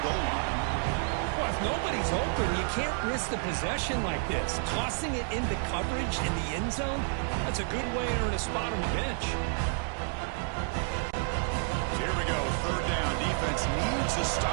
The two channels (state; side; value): silent; left; 57 dB below the other